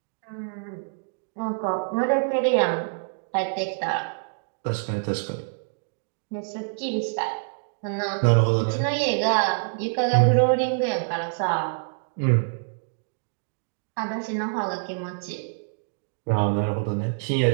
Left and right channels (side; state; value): left; silent; digital silence